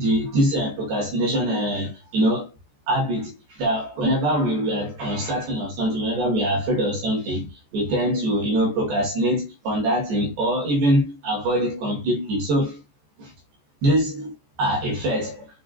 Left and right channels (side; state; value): left; late; 14 ms